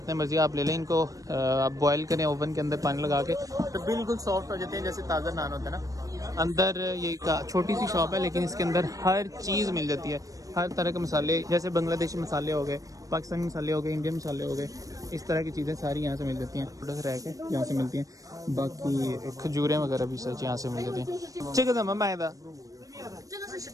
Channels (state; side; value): late; left; 0.16 ms